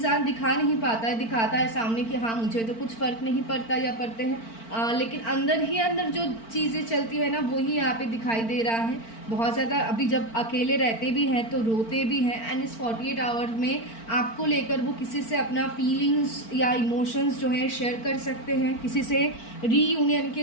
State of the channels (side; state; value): right; late; 4.4 ms